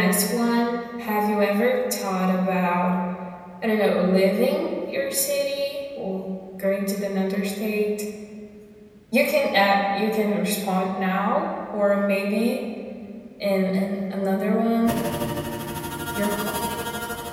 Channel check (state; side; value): identical; both; correlation 1.00